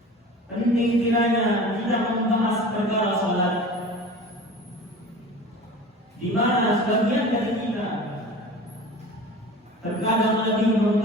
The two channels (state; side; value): normal; both; correlation 0.38